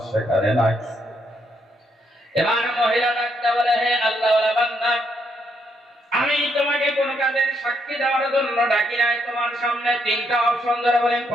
সেখানে নাই। এবার মহিলা ডাকতে বলে, হে আল্লাহওয়ালা বান্দা, আমি তোমাকে কোন কাজের সাক্ষী দেওয়ার জন্য ডাকি নাই। তোমার সামনে তিনটা অপশন ধরে বলেন,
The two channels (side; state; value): both; normal; correlation 0.76